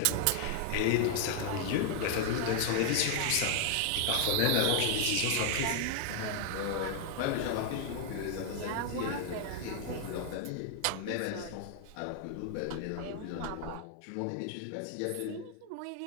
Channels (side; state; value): both; different; correlation 0.00